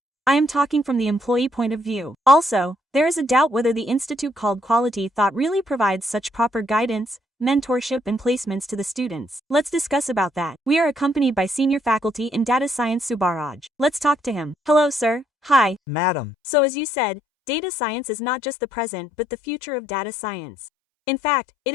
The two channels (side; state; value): right; drops out; at 15.8 s